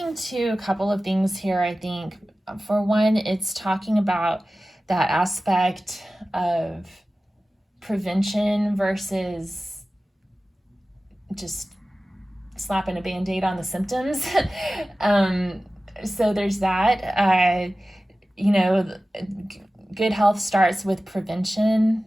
to a couple of things here, I think. For one, it's talking about that aspect of prevention versus just slapping a Band-Aid on the symptoms. So there's that. Good health starts with prevention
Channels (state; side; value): normal; both; correlation 0.96